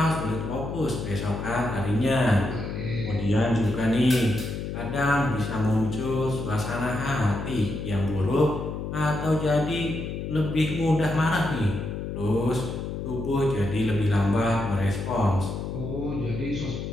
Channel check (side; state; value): left; noise; hum, 5 dB below the sound